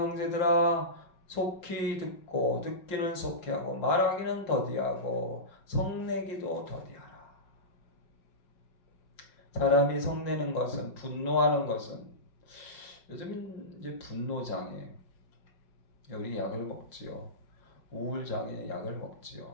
속히 듣고 듣기는 속히 하고 말하기는 더디하고 성내기도 더디하라. 사람이 성내는 것은 분노하는 것은 요즘 이제 분노장애 우리 약을 먹지요. 우울장애 약을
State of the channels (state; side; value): late; right; 5.7 ms